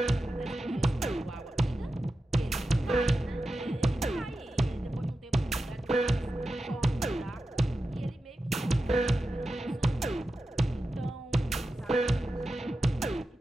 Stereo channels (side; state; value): both; normal; correlation 0.91